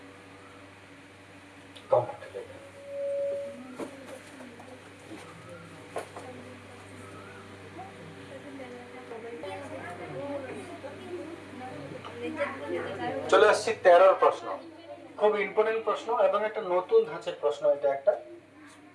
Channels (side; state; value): both; identical; correlation 1.00